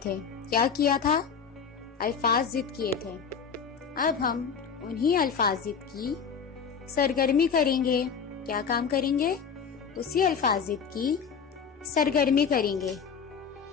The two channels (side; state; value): right; quieter; 6.4 dB